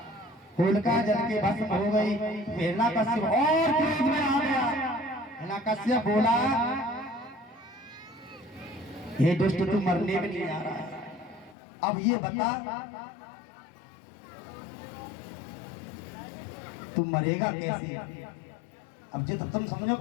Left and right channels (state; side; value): drops out; right; at 11.6 s